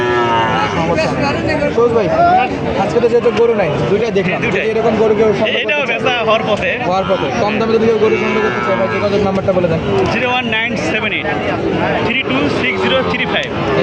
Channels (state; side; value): identical; both; correlation 1.00